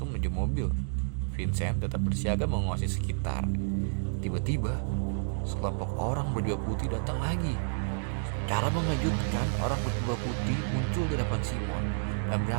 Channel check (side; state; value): left; silent; digital silence